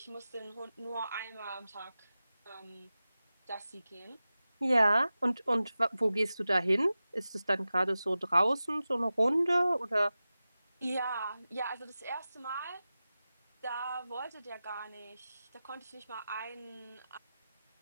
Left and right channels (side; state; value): both; inverted; correlation -0.94